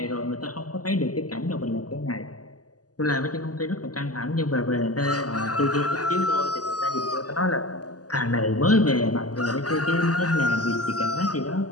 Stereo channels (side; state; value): right; late; 0.68 ms